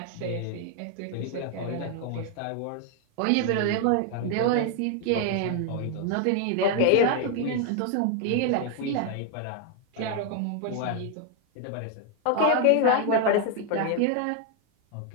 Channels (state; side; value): different; both; correlation 0.00